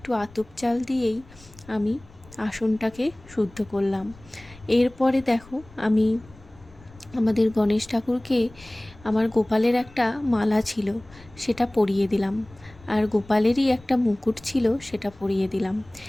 আতপ চাল দিয়েই আমি আসনটাকে শুদ্ধ করলাম। এরপরে দেখো, আমি আমাদের গণেশ ঠাকুরকে আমার গোপালের একটা মালা ছিল সেটা পরিয়ে দিলাম, আর গোপালেরই একটা মুকুট ছিল সেটা পরিয়ে দিলাম।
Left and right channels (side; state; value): left; noise; rumble, 23 dB below the sound